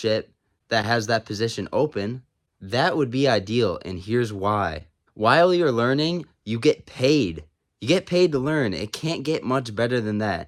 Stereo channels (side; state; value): both; identical; correlation 1.00